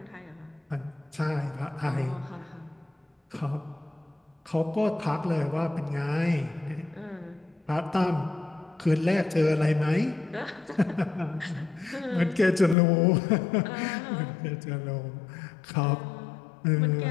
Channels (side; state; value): right; drops out; at 12.8 s